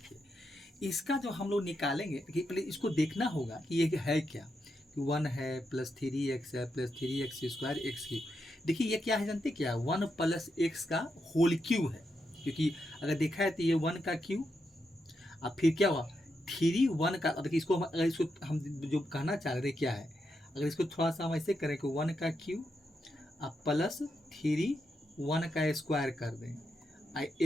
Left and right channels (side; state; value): both; normal; correlation 0.84